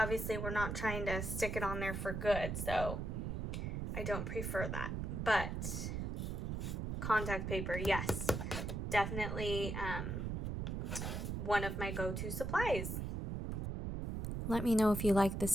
we're not trying to stick it on there for good, so I don't prefer that. But contact paper, yes, definitely one of my go-to supplies. Let me know if you like this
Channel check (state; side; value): noise; right; rumble, 2 dB below the sound